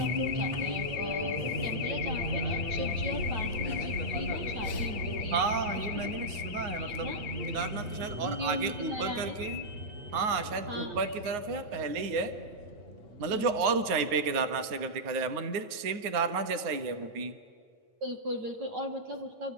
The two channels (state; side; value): late; left; 9.6 ms